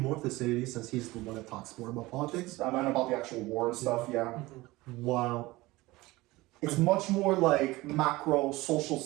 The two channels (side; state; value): left; quieter; 20.0 dB